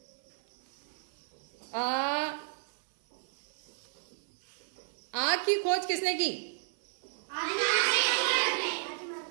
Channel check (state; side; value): silent; left; 56 dB below the other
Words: आग की खोज किसने की?